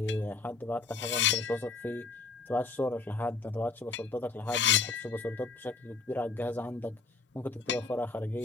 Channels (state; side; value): quieter; right; 4.3 dB